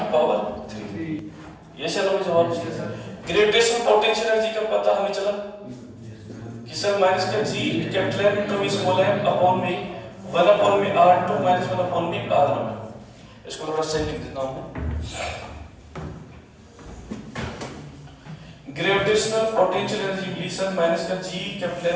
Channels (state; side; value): identical; both; correlation 1.00